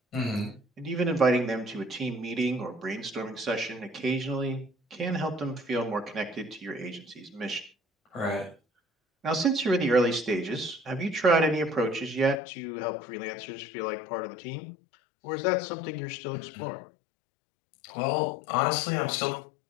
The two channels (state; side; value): drops out; right; at 12.4 s